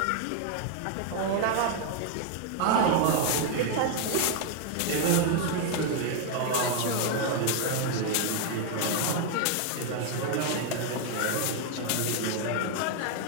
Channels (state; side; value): different; both; correlation 0.00